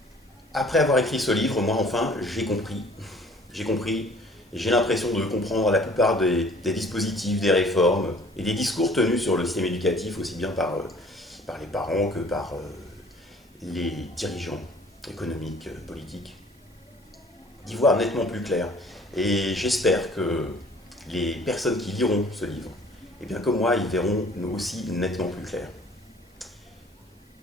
Après avoir écrit ce livre, moi enfin, j'ai compris, et j'ai l'impression de comprendre la plupart des dispositifs, des réformes et des discours tenus sur le système éducatif, aussi bien par les parents que par les dirigeants économiques, politiques, d'y voir nettement plus clair. Et j'espère que les personnes qui liront ce livre, eh bien comme moi, ils verront aussi nettement plus clair.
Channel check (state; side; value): normal; both; correlation 0.53